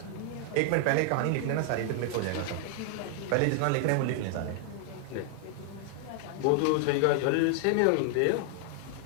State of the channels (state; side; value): different; both; correlation 0.00